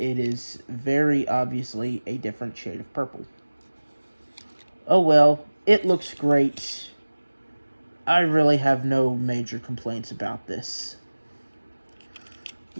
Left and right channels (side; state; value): both; inverted; correlation -1.00